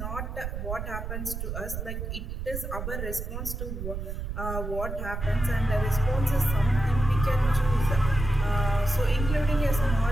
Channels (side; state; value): right; noise; rumble, 5 dB below the sound